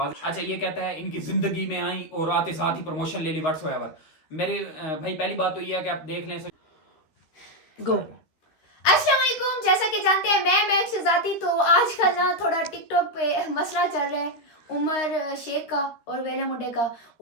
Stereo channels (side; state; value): right; late; 13 ms